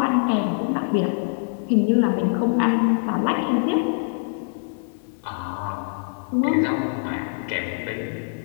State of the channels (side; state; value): right; silent; digital silence